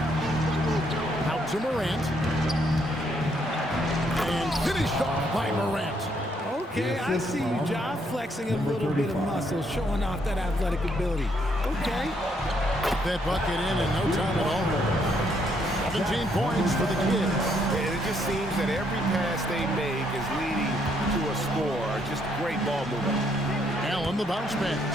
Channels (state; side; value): normal; both; correlation 0.72